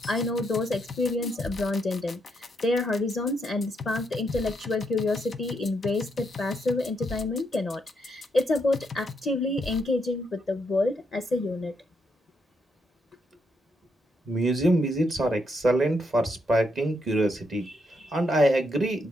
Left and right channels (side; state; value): both; normal; correlation 0.78